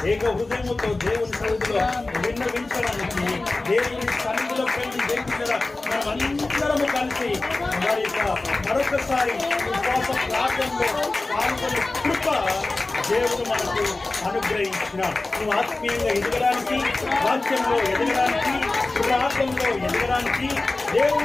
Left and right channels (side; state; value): right; quieter; 3.2 dB